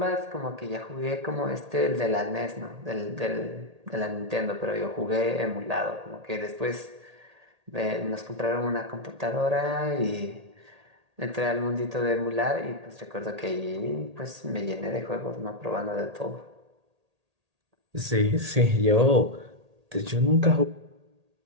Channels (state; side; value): late; left; 1.8 ms